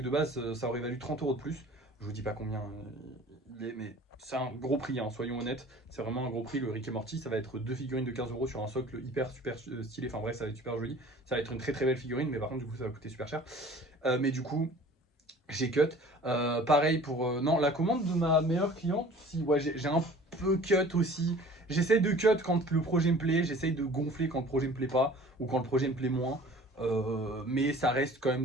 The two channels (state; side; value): normal; both; correlation 0.46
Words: de base, ça aurait valu 30 € de plus. Je vous dis pas combien il est, mais c'est un gros prix, hein, soyons honnêtes. C'est vraiment un gros prix. Le Rick et Morty, ça va être deux figurines de 15 € sur un socle hyper super stylé. Enfin bref, ça va être super joli. Ça va être une très très belle figurine, mais par contre, du coup, ça va coûter super cher. Mais du coup, j'ai cut. Pareil pour. Non, la commande de ma meilleure cliente, si, ouais, j'ai un peu cut aussi. J'essaie de cut quand le projet me plaît, j'essaie de gonfler quand le projet me plaît pas, ou quand le projet me plaît moins. Mais ça reste quand